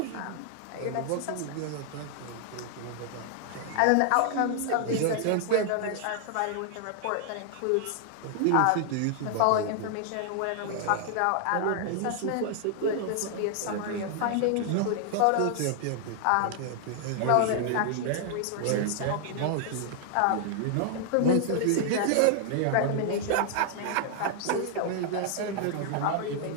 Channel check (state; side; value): different; both; correlation 0.00